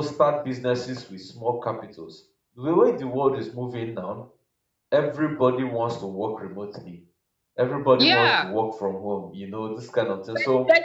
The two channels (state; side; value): identical; both; correlation 1.00